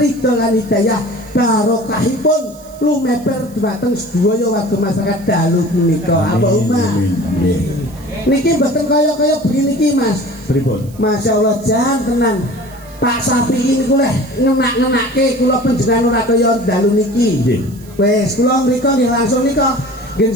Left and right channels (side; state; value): right; noise; hiss, 24 dB below the sound